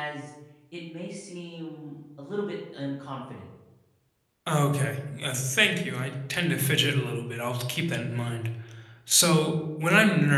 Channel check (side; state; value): both; identical; correlation 1.00